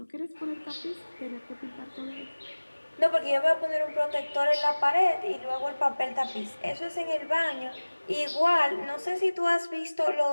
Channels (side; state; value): both; inverted; correlation -1.00